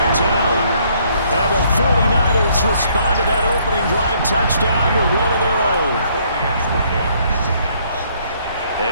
out. And the 49ers respond to that opening drive touchdown with one of their own.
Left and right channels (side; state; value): both; inverted; correlation -0.66